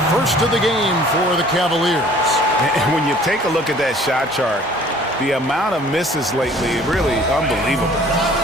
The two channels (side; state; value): both; normal; correlation 0.53